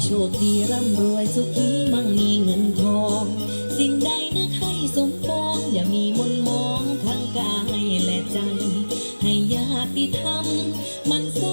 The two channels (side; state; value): both; inverted; correlation -1.00